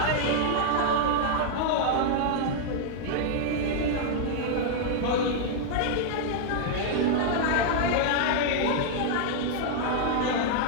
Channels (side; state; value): both; different; correlation -0.01